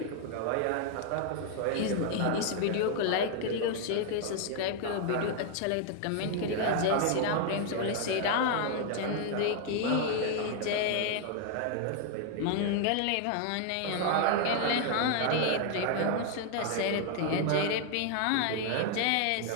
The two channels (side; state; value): both; different; correlation 0.00